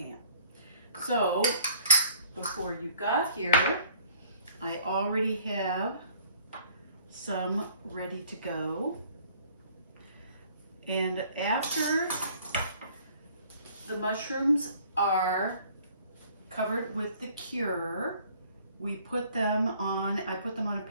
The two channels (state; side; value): inverted; both; correlation -0.57